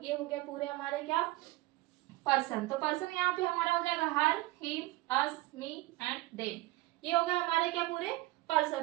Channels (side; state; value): left; quieter; 19.1 dB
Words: ये हो गया पूरे हमारे क्या पर्सन। तो पर्सन यहाँ पे हमारा हो जाएगा her, him, us, me and them. ये हो गए हमारे क्या पूरे